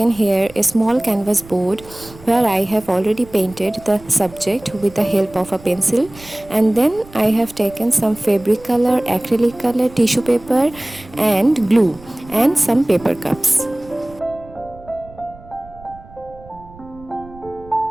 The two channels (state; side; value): noise; right; rumble, 21 dB below the sound